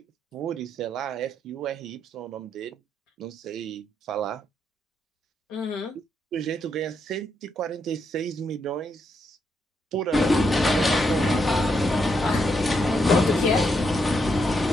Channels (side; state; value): both; normal; correlation 0.79